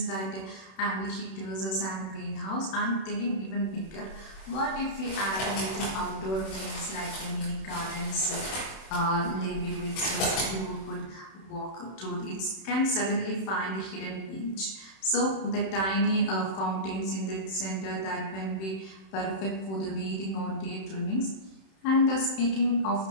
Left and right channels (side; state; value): right; late; 31 ms